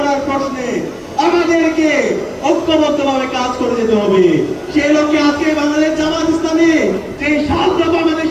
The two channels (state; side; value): identical; both; correlation 1.00